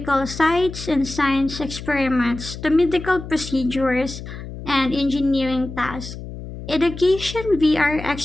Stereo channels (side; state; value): left; noise; hum, 11 dB below the sound